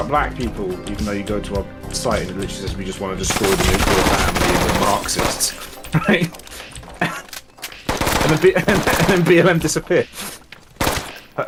black people, even though you go to our site and it literally says we just want to destroy the nuclear family and the Marxists, right? and then BLM disappeared.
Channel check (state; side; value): identical; both; correlation 1.00